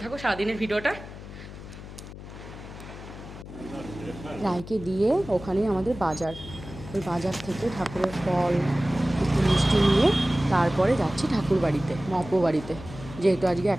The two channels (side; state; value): left; noise; hum, 13 dB below the sound